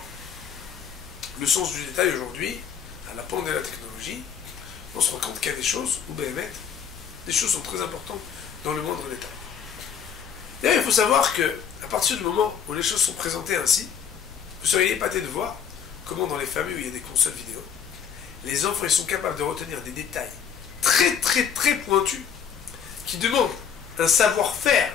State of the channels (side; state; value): right; quieter; 7.7 dB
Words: le sens du détail aujourd'hui, à la pointe de la technologie, on se rend compte qu'il y a des choses, ou bien des choses sont très importantes dans le moindre détail. D'ailleurs, il faut savoir que, à partir du moment où les choses sont présentées ainsi, vous seriez épaté de voir comment dans les familles où il y a des consoles vidéo, les enfants ils sont capables de retenir des détails très très très pointus qui demandent un savoir-faire